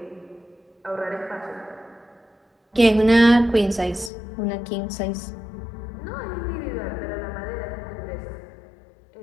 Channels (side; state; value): right; drops out; at 4.1 s